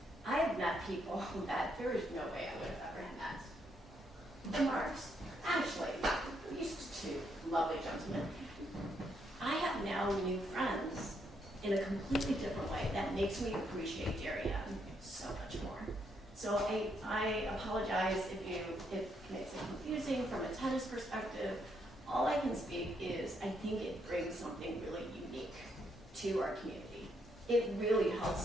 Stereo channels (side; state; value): both; normal; correlation 0.76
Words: I have met people that there is no way I would have ever met. The Marks, actually, these two lovely gentlemen. I have now new friends in a completely different way that makes me appreciate Darien so much more. So I apologize if it makes it confusing from a tennis perspective. All I can speak is I think it brings something really unique to our community. It really